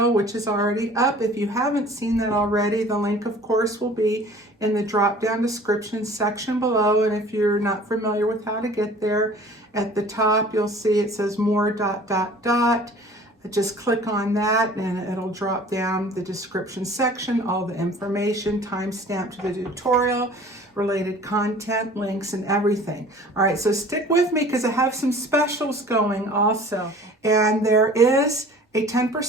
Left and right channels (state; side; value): normal; both; correlation 0.47